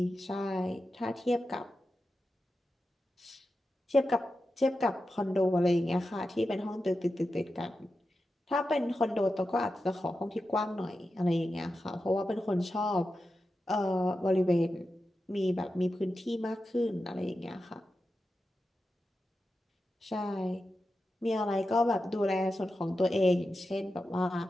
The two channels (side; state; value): both; normal; correlation 0.91